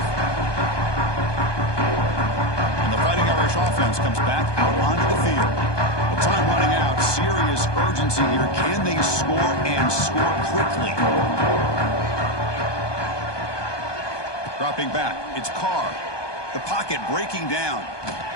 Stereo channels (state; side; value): late; right; 1.2 ms